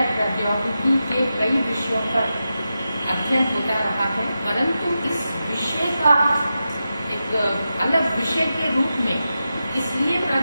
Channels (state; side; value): inverted; both; correlation -0.90